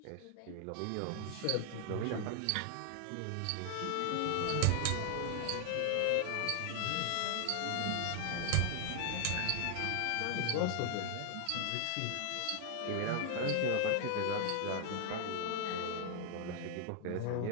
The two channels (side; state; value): both; different; correlation 0.00